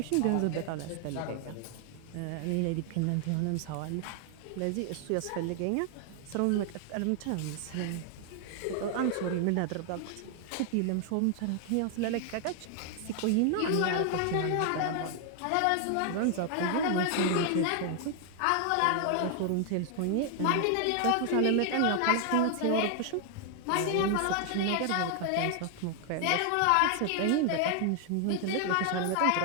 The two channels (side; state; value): both; different; correlation 0.00